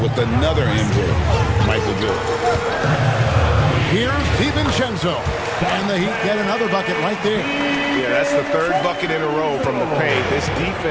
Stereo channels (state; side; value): identical; both; correlation 1.00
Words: another MJ, Michael Jordan. Here's DiVincenzo, and the Heat get another bucket right there. Yeah, that's the 3rd bucket in a row from the paint. This